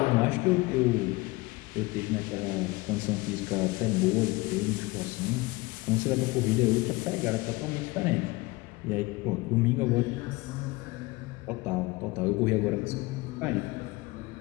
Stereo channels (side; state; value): right; quieter; 22.6 dB